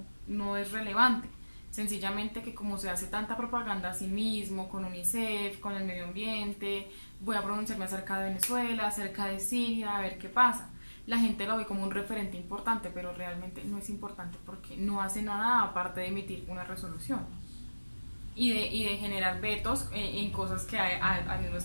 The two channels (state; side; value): inverted; both; correlation -1.00